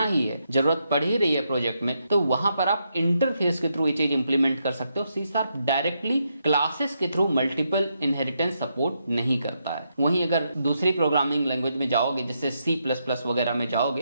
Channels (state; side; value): inverted; both; correlation -0.80